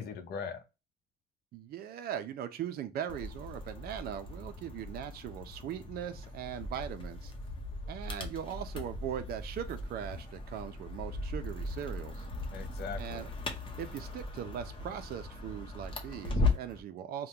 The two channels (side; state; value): both; normal; correlation 0.37